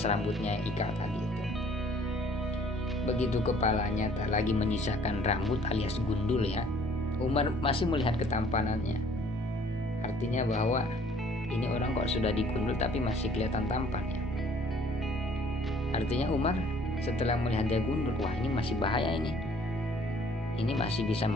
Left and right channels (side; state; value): both; normal; correlation 0.57